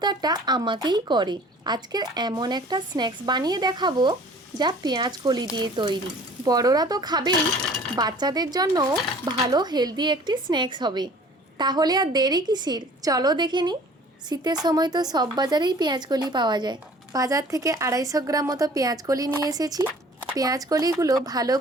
আমাকেই করে। আজকের এমন একটা স্ন্যাক্স বানিয়ে দেখাবো যা পেঁয়াজ কলি দিয়ে তৈরি। বড়রা তো খাবেই, বাচ্চাদের জন্য ভালো হেলদি একটি স্ন্যাক্স হবে। তাহলে আর দেরি কিসের, চলো দেখে নিই। শীতের সময় তো সব বাজারেই পেঁয়াজ কলি পাওয়া যায়। বাজার থেকে 250 গ্রাম মতো পেঁয়াজ কলি নিয়ে এসেছি। পেঁয়াজ কলিগুলো ভালো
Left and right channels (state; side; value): normal; both; correlation 0.49